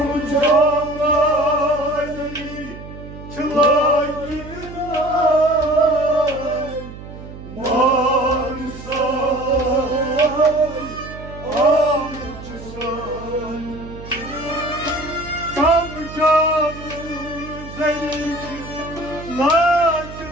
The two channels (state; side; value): noise; right; hum, 14 dB below the sound